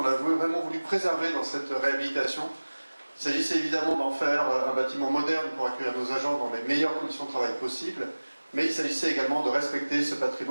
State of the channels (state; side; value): inverted; both; correlation -1.00